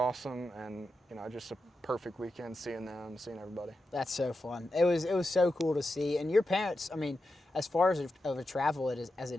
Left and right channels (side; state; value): both; normal; correlation 0.89